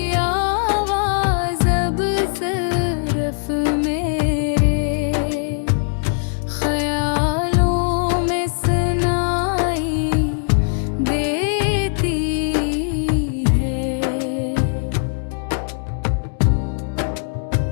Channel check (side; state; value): right; silent; digital silence